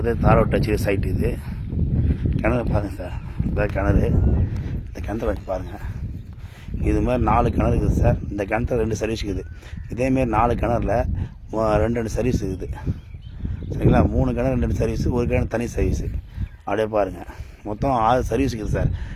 தாரோட்டு வச்சு சைட்டு இது. கிணறு பாருங்கள் சார். இதான் கிணறு. இந்த கிணத்துல வச்சு பாருங்கள். இது மாதிரி 4 கிணறு இருக்குது சார். இந்த கிணத்துல 2 சர்வீஸ் இருக்குது. இதேமாரி 4 கிணறுல 2 சர்வீஸ் இருக்குது. சரிங்களா? 3 கிணறு 2 சர்வீஸு, ஒரு கிணறு தனி சர்வீஸு. அப்படியே பாருங்கள். மொத்தம் 6 சர்வீஸ் இருக்குது சார்.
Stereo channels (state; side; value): identical; both; correlation 1.00